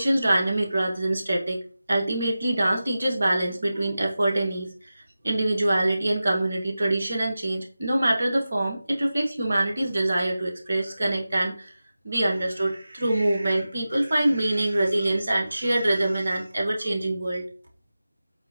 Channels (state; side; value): inverted; both; correlation -0.94